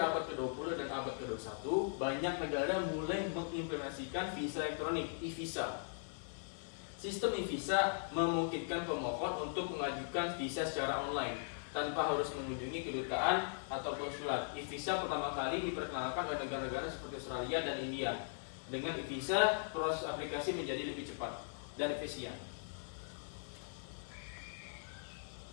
abad ke-20 dan abad ke-21, banyak negara mulai mengimplementasikan visa elektronik, e-visa. Sistem e-visa memungkinkan pemohon untuk mengajukan visa secara online, tanpa harus mengunjungi kedutaan atau konsulat. E-visa pertama kali diperkenalkan oleh negara-negara seperti Australia dan India. Dengan e-visa, proses aplikasi menjadi lebih cepat dan efisien.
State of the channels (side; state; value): right; silent; digital silence